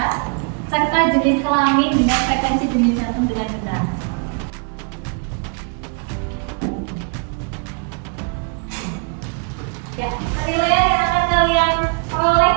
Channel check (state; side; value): quieter; left; 36.7 dB